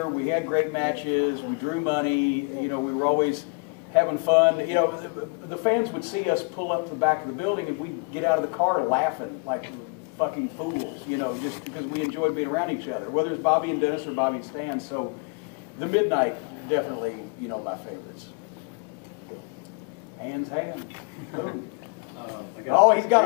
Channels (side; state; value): right; quieter; 35.4 dB